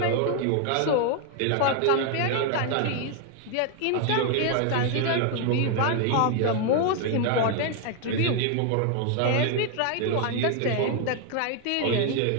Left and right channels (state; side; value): different; both; correlation 0.00